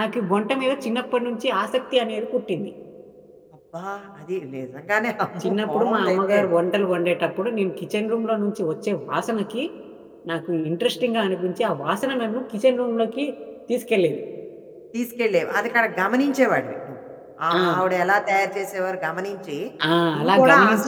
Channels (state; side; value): identical; both; correlation 1.00